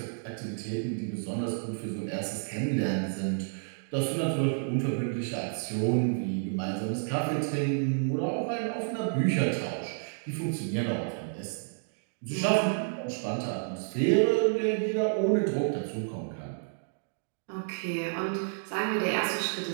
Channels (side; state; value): left; silent; digital silence